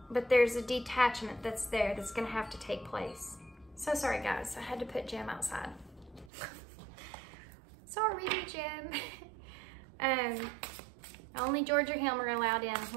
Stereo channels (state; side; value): drops out; left; at 6.3 s